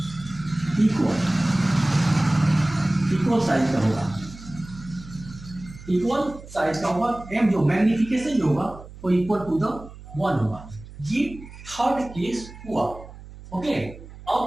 इक्वल साइज का होगा, इक्वल साइज का होगा। एम जो मैग्निफिकेशन जो होगा वो इक्वल टू द 1 होगा। ये थर्ड केस हुआ। ओके,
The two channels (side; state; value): right; noise; hum, 17 dB below the sound